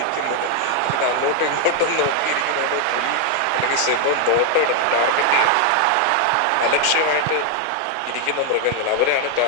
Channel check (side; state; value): both; different; correlation 0.00